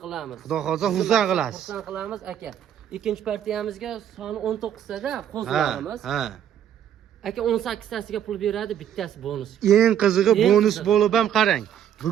qilamiz. Xudo xolsa xursand qilasiz. Xursand qilamiz aka. Ikkinchi partiyamizga soni 19 tada qo'zlarimiz. Aka 18 tasiga pul beradi, bittasi bonus. Eng qizig'i bonus bo'lib ham qarang.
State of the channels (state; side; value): quieter; left; 9.8 dB